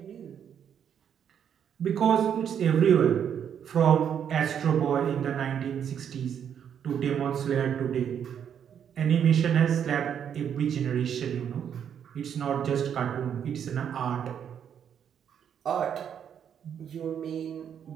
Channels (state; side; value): quieter; left; 8.5 dB